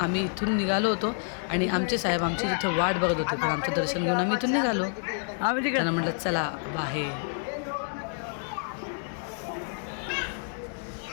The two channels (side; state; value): right; silent; 58 dB below the other